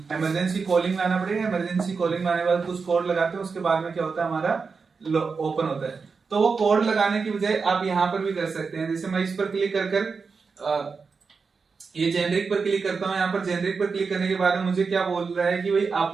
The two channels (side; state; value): left; quieter; 5.0 dB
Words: इमरजेंसी कॉलिंग में आना पड़ेगा। इमरजेंसी कॉलिंग में आने के बाद कुछ कोड लगाते हैं, उसके बाद में क्या होता है हमारा ओपन होता है। तो वो कोड लगाने की बजाय आप यहाँ पर भी कर सकते हैं, जैसे मैं इस पर क्लिक कर ये जेनरिक पर क्लिक करता हूँ। यहाँ पर जेनरिक पर क्लिक करने के बाद में मुझे क्या बोल रहा है कि भाई